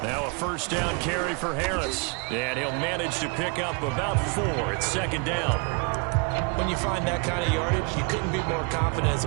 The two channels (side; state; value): left; quieter; 34.1 dB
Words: Now a first down carry for Harris. And he'll manage to pick up about 4. It's 2nd down. When you find that kind of yardage, you couldn't be more confident as a